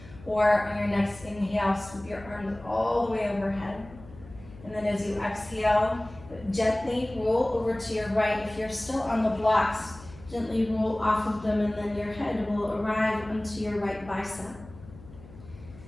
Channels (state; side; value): noise; left; hum, 19 dB below the sound